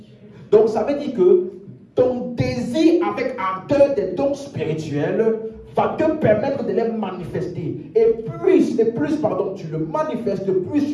Donc ça veut dire que ton désir avec ardeur des dons spirituels va te permettre de les manifester. Et plus tu le manifestes, plus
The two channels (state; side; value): identical; both; correlation 1.00